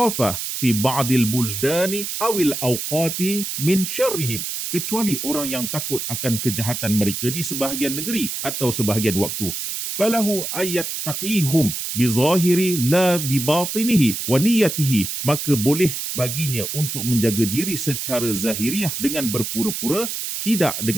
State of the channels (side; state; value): right; noise; hiss, 4 dB below the sound